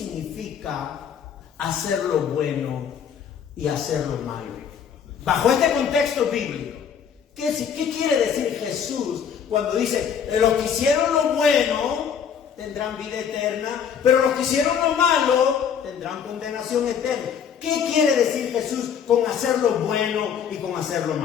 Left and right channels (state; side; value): quieter; right; 7.6 dB